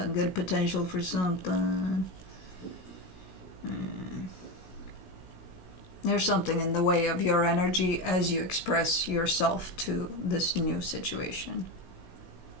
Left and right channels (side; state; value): right; late; 16 ms